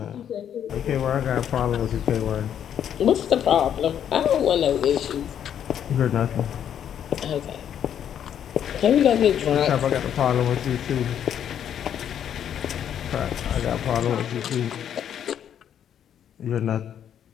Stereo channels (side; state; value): right; quieter; 9.4 dB